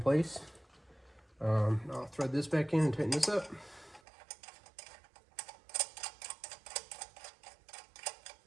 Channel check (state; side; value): drops out; left; at 4.0 s